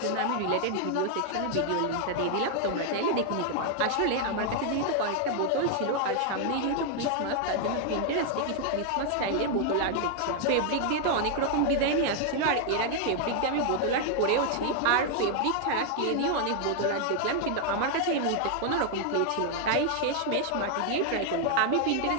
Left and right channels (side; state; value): both; different; correlation 0.00